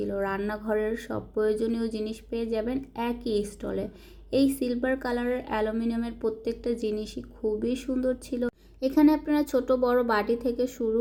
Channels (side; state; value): both; identical; correlation 1.00